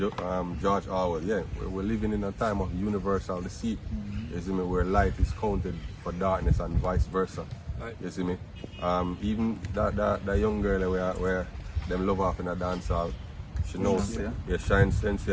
George Orwell. Yeah, we're living in a time of universal deceit. You see me, where light is counted for darkness and vice versa. Right. You see me, even that young girl where them love off in a dance hall, she knows. Yeah, Shine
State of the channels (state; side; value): identical; both; correlation 1.00